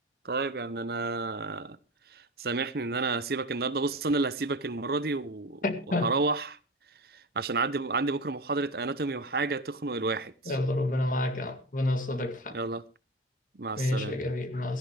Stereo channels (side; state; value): both; normal; correlation 0.28